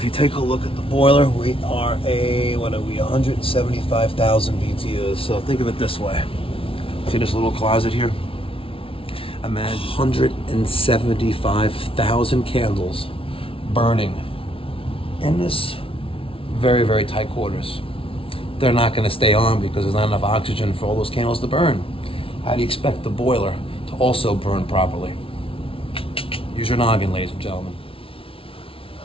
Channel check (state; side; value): late; right; 0.26 ms